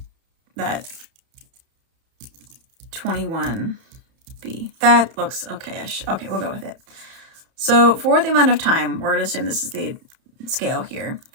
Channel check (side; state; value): left; late; 31 ms